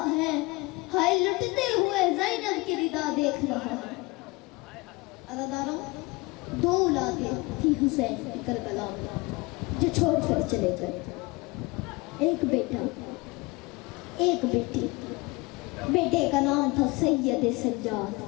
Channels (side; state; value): right; quieter; 24.4 dB